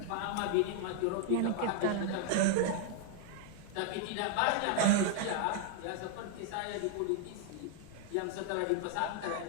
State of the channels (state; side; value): different; both; correlation 0.00